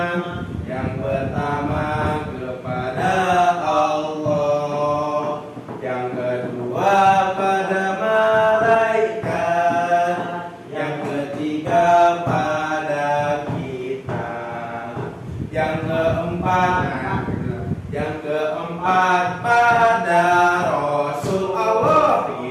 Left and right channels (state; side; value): identical; both; correlation 1.00